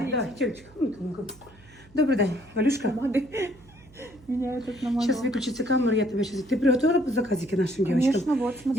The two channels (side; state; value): right; noise; hum, 25 dB below the sound